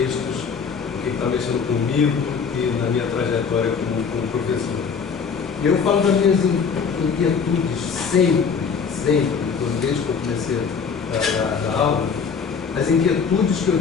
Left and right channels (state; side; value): quieter; right; 6.0 dB